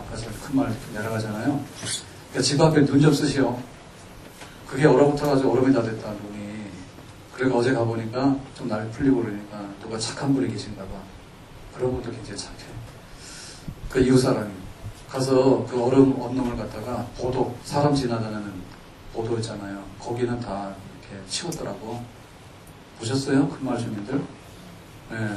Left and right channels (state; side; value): identical; both; correlation 1.00